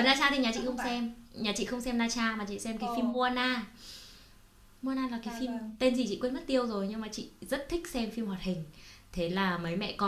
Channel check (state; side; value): identical; both; correlation 1.00